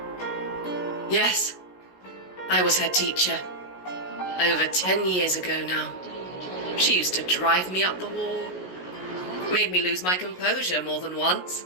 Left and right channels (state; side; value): late; right; 16 ms